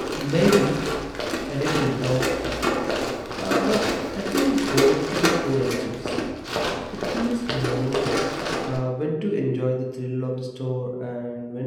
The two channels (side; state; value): both; identical; correlation 1.00